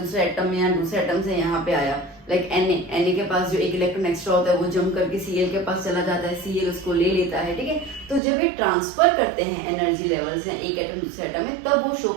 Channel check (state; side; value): drops out; left; at 8.2 s